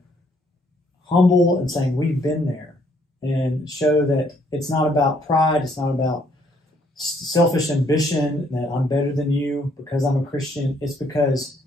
humble and saying we've been there, and show that it's not about pride, it's not about selfish ambition that I'm better than you because I'm a Christian. It's because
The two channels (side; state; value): both; normal; correlation 0.67